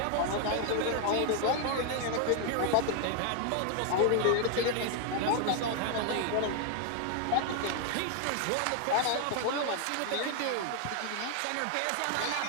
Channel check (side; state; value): both; different; correlation 0.00